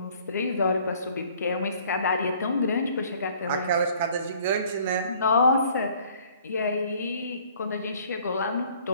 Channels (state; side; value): inverted; both; correlation -0.56